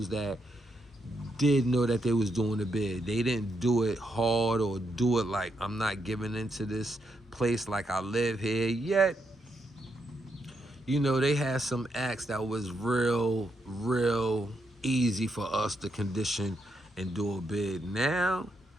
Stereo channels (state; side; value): normal; both; correlation 0.80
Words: that did know that they was doing the bid. They didn't do it hard or do it like, I'm not giving into this place like I live here. Yet, you know, they had some acts that was real easy for us to condition and do a bid. Now,